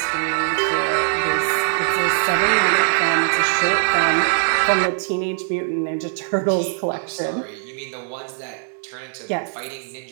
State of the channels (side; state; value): left; silent; digital silence